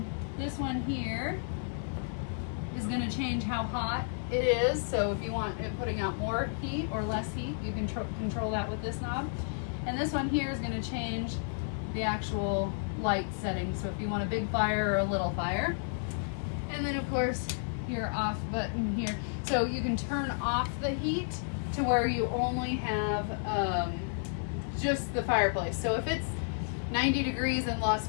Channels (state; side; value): silent; right; digital silence